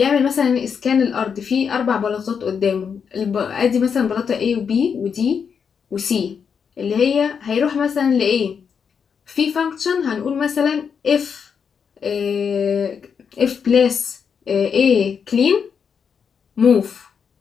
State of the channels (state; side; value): quieter; right; 6.7 dB